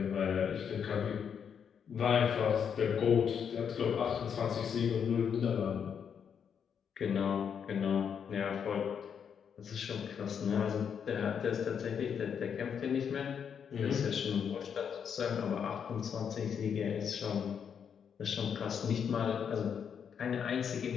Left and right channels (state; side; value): quieter; right; 7.5 dB